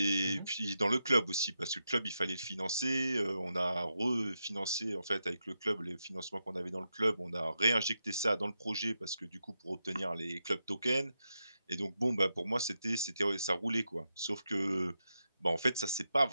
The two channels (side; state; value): both; inverted; correlation -0.86